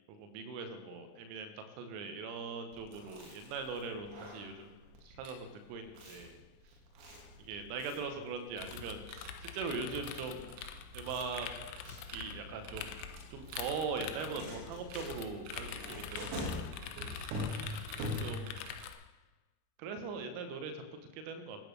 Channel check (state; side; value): late; left; 38 ms